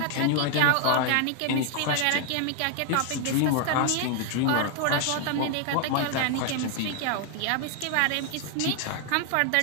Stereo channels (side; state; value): both; different; correlation 0.00